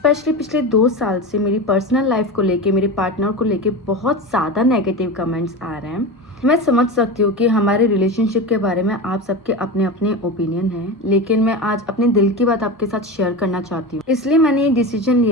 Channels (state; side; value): normal; both; correlation 0.24